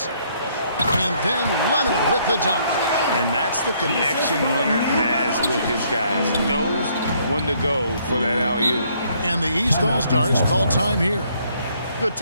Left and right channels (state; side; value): inverted; both; correlation -0.67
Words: And then Leonard with the dunk. And that's the connection Leonard has with his guys. Knows when to go for that alley-oop. And the East All-Stars call time here. Good